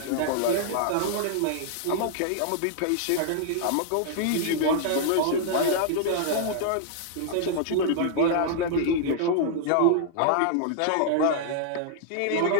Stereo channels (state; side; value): different; both; correlation -0.01